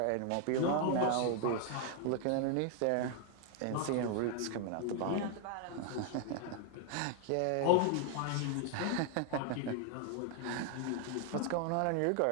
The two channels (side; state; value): both; different; correlation 0.00